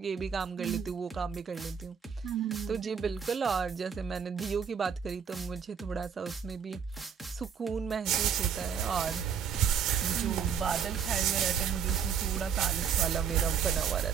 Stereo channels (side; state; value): left; quieter; 7.3 dB